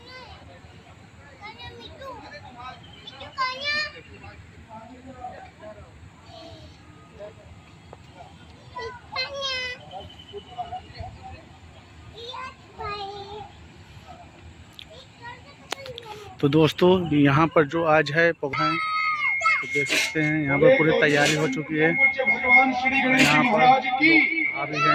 तो दोस्तों यहाँ पर जो आज है प्रोग्राम तो देख सकते हैं, यहाँ पर पूरी तैयारी हो चुकी है। भगवान श्री गणेश यहाँ पर महाराज की आ भी गए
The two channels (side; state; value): both; identical; correlation 1.00